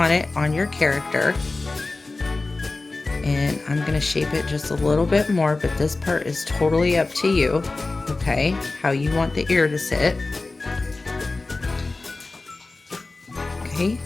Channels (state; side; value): quieter; right; 3.4 dB